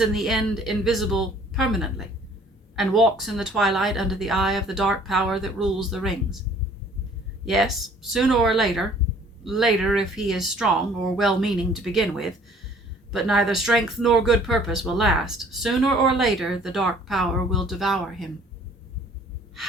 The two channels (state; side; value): normal; both; correlation 0.55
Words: the end invisible permanently, and walks in the twilight under the eye of the dark power that rules the rings. Yes, sooner or later if he is strong or well-meaning to begin with, but neither strength nor good purpose will last, sooner or later the dark power will devour him."